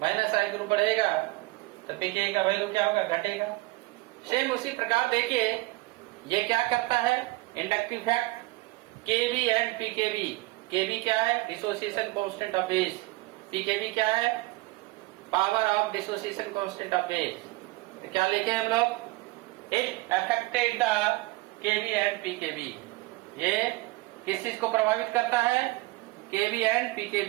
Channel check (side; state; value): left; quieter; 21.4 dB